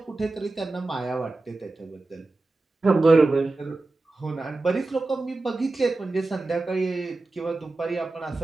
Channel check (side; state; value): left; quieter; 3.2 dB